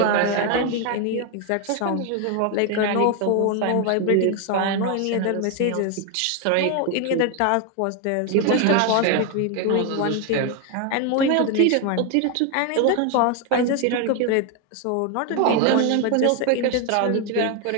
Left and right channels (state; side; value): different; both; correlation 0.01